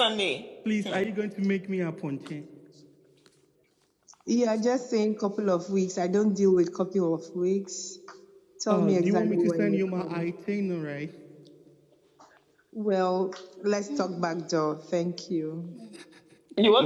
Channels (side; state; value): both; identical; correlation 1.00